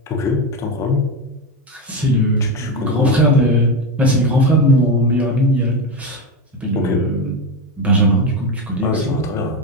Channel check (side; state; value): both; normal; correlation 0.15